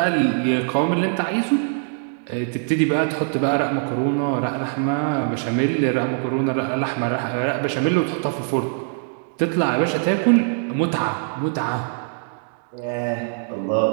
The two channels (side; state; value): left; silent; digital silence